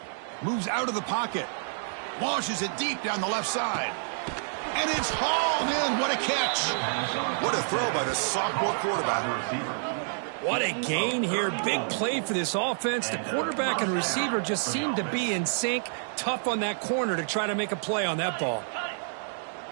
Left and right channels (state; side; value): silent; left; 59 dB below the other